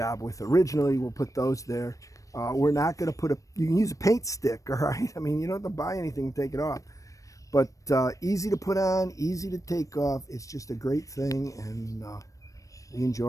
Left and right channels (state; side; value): late; right; 0.16 ms